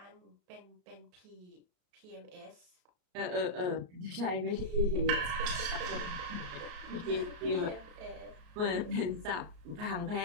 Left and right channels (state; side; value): late; left; 33 ms